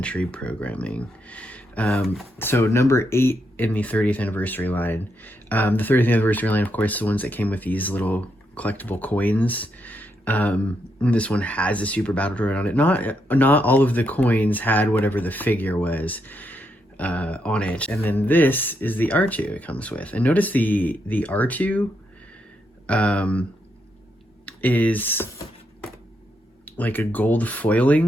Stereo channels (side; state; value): both; normal; correlation 0.80